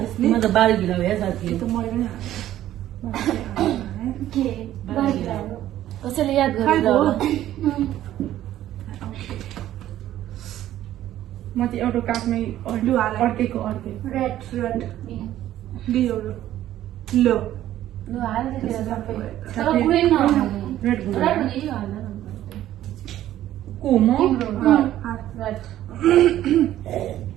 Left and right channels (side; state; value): left; quieter; 13.0 dB